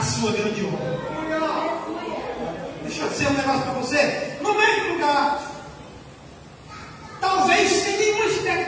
sua grande obra. Deixa eu dizer um negócio para você, no mesmo lugar, talvez sem nenhuma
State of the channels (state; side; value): identical; both; correlation 1.00